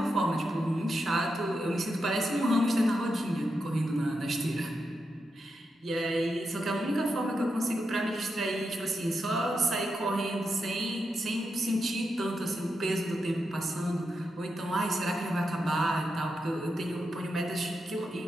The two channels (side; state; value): both; normal; correlation 0.86